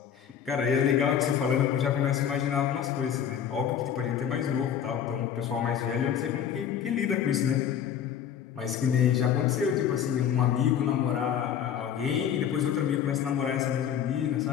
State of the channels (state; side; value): quieter; right; 8.8 dB